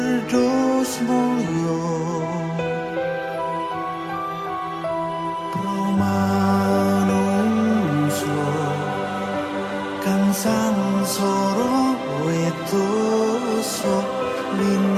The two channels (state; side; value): identical; both; correlation 1.00